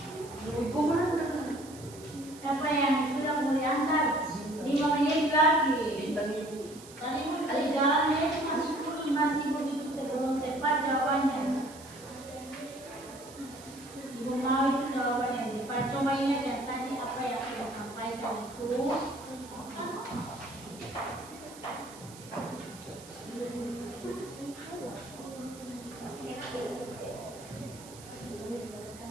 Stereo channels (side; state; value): right; noise; hiss, 18 dB below the sound